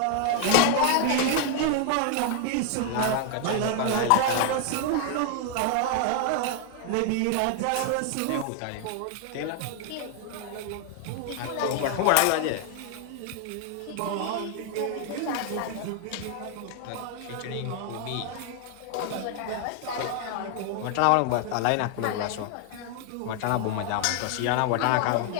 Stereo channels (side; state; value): both; different; correlation 0.00